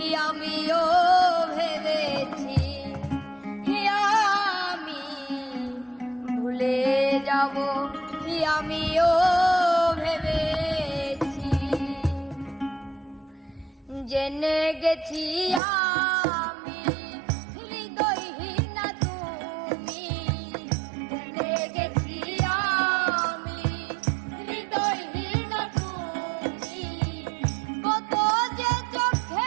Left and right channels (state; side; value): drops out; left; at 15.6 s